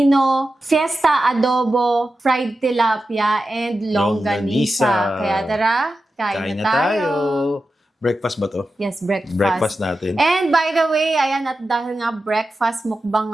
fiesta adobo, fried tilapia, and longganisa. Kaya tara, kain na tayo. Breakfast ba to? Yes, breakfast. Breakfast natin. And by the way, ayan, at dahil nga breakfast mukbang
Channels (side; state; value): both; normal; correlation 0.92